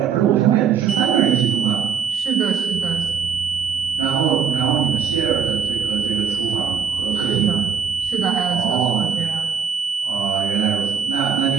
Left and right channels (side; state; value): left; quieter; 7.0 dB